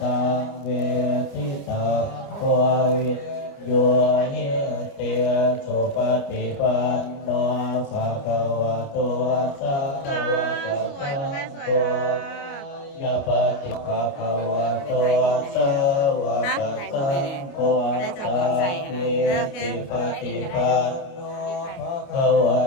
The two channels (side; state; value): right; late; 29 ms